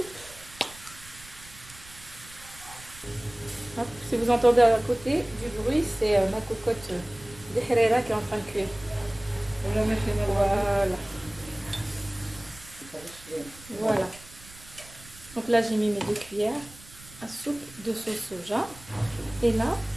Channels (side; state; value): right; noise; rumble, 20 dB below the sound